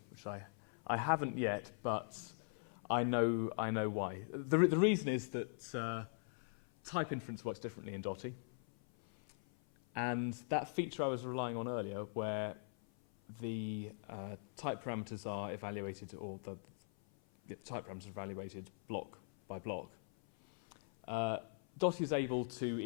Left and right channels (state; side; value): silent; right; 51 dB below the other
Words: which I haven't yet, but I know why. The reason is that type inference works differently in Dotty, and that feature I was relying on earlier, where the type parameters are evaluated, or the the type parameters are evaluated block by block. Dotty is able to